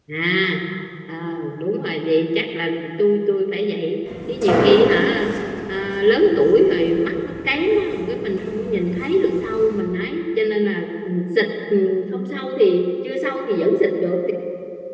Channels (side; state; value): both; identical; correlation 1.00